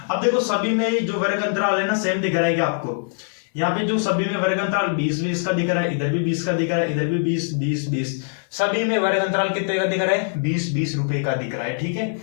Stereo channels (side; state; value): right; silent; 63 dB below the other